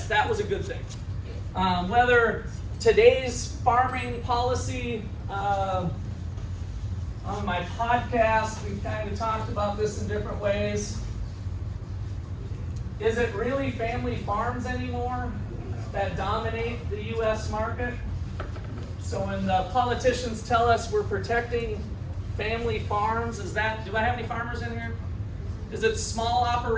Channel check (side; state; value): both; identical; correlation 1.00